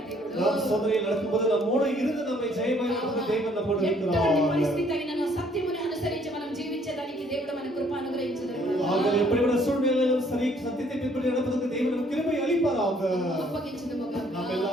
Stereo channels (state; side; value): normal; both; correlation 0.63